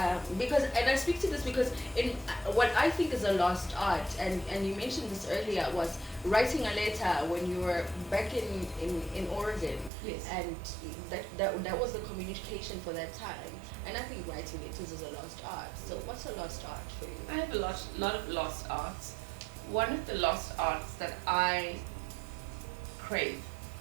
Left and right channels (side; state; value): left; drops out; at 9.9 s